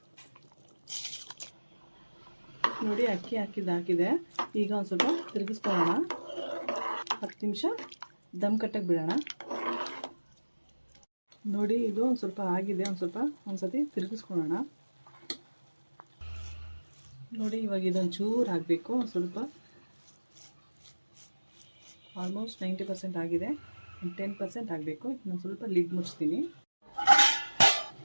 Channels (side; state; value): both; inverted; correlation -1.00